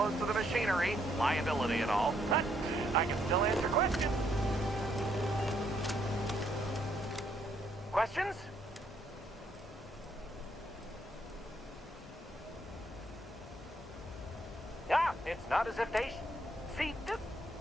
to the machinery, liability and all, but I can still answer questions. Questions? Ah, it's not as if they... See,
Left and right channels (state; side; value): normal; both; correlation 0.72